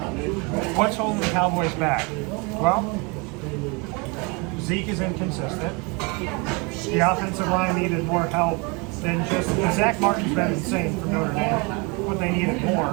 what's holding the Cowboys back? Well, Zeke is inconsistent. The offensive line needed more help than just Zach Martin's been insane for Notre Dame, but they needed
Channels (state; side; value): quieter; left; 29.8 dB